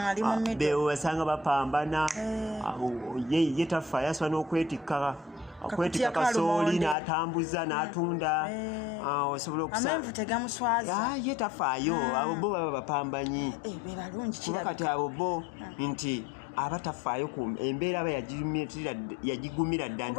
bewasanga bapambana ye tafaayo asobola n'okwetikka kasooli n'atambuza n'atunda osobola okusanga ye tafaayo abo bo baba bapambanyi kuba kati abo bo nti abatafaayo ku embeera aba yagigumira dda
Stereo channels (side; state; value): right; drops out; at 7.0 s